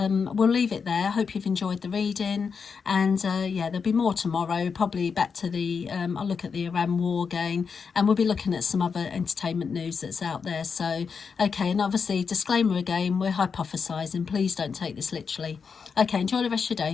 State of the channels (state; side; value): quieter; right; 5.8 dB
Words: we'll leave it there. I hope you've enjoyed the reading, and yeah, there'll be more tomorrow, probably back to the I'll look at the Iran war again, and we'll be looking at some other entertainment news that's out there. So okay, and obviously disclaimer again, we're hypothesizing, please don't take this literally. Okay, enjoy the rest of your